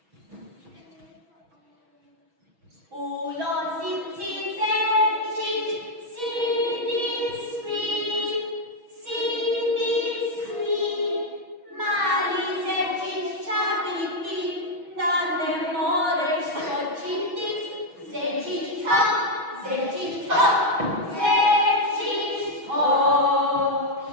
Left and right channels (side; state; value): left; late; 6.1 ms